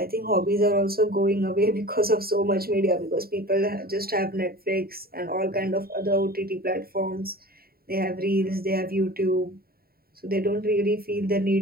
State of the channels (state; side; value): late; left; 0.44 ms